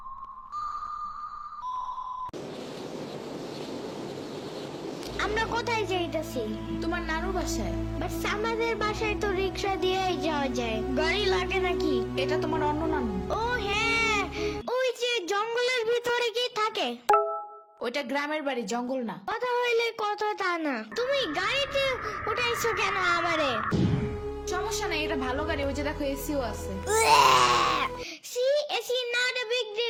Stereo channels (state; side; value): identical; both; correlation 1.00